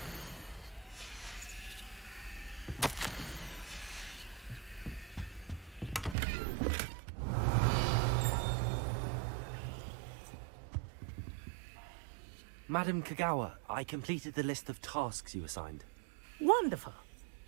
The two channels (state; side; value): drops out; left; at 6.2 s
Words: Madam Kagawa, I completed the list of tasks you assigned. Wonderful.